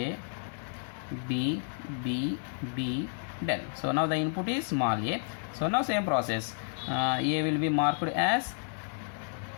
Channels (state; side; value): silent; right; 57 dB below the other